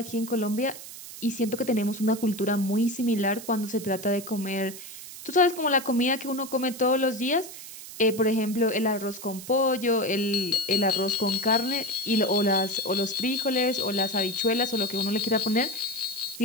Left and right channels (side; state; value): right; noise; hiss, 13 dB below the sound